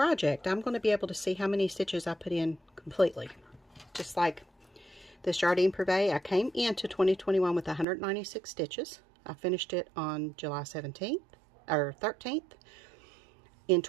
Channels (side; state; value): left; drops out; at 7.9 s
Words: I'm going to be able to see how many stitches I put in completely. Just like this Jardine Privé, I came into 2021 with 196 stitches. I finished it on July 17th or 13th. In